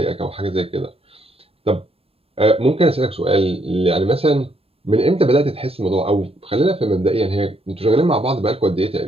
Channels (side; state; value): left; late; 0.28 ms